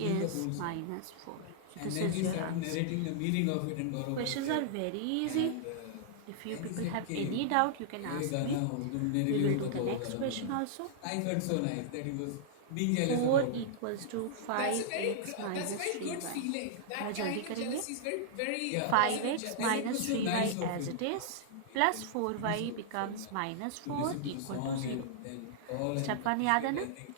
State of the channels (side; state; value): both; different; correlation -0.01